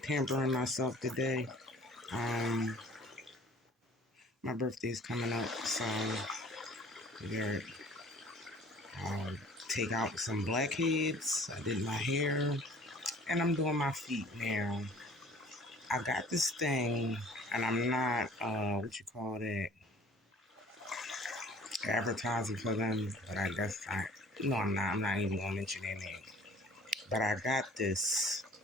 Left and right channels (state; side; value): normal; both; correlation 0.50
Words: pampering myself today. Um, my birthday's coming up, so we're I'll take out some blackheads. I did my hair, and I'm doing my feet now. I got this thing, and I'm not what you call it, advertising for them, but I guess I no, I'm not. I'm not even gonna mention their name. But I got this,